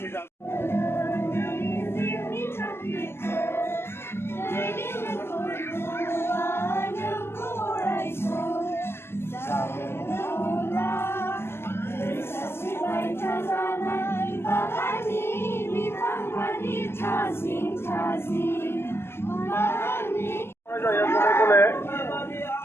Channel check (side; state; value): right; late; 0.12 ms